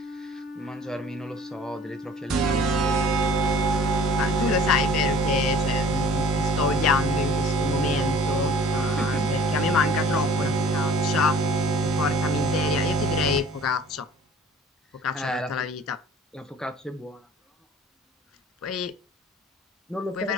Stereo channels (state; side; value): normal; both; correlation 0.49